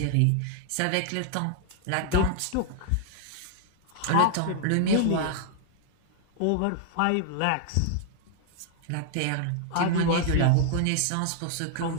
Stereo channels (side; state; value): both; different; correlation 0.00